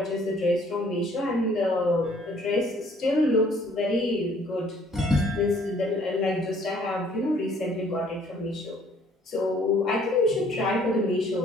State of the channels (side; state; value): both; normal; correlation 0.59